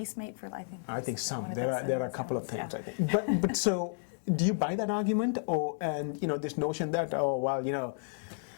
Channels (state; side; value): silent; right; digital silence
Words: mate for life? I think some. There are a couple of things, I think. But so, do you buy that argument, and you know, this notion that, oh well, you know,